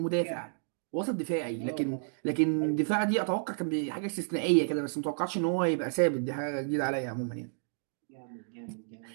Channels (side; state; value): left; silent; digital silence